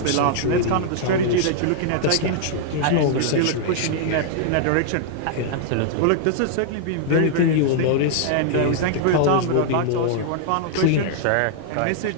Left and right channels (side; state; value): both; different; correlation -0.01